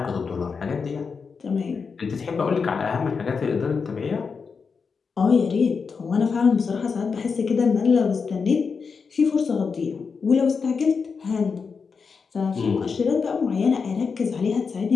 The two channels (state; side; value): quieter; right; 5.4 dB